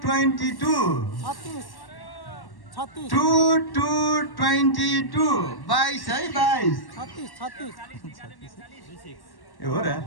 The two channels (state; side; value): late; right; 1.1 ms